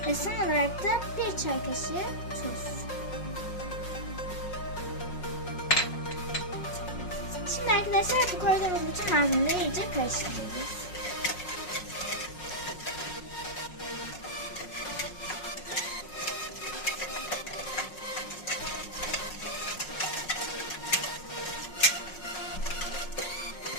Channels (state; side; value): late; right; 5.5 ms